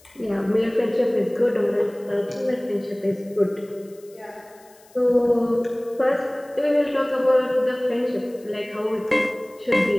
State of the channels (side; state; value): left; noise; hiss, 28 dB below the sound